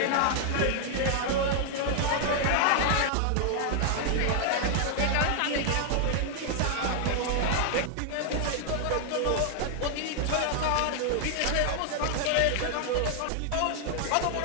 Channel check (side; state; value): both; different; correlation 0.00